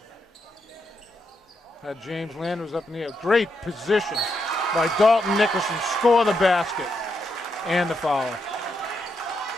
Had James Landers up in the air. Great position by Dalton Nickerson. Score the basket. And the foul.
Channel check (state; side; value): normal; both; correlation 0.82